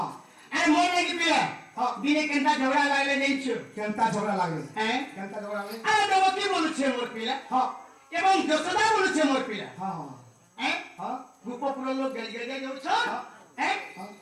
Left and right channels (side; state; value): both; identical; correlation 1.00